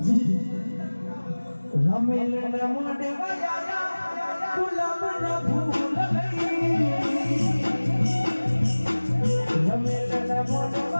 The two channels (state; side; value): inverted; both; correlation -1.00